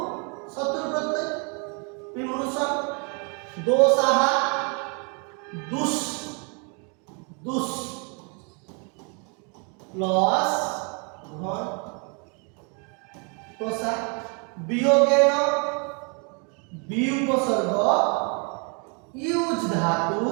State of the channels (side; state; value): left; quieter; 35.7 dB